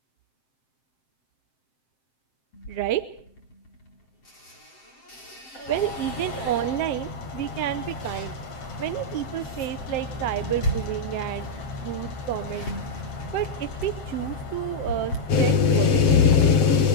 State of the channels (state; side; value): late; right; 7.6 ms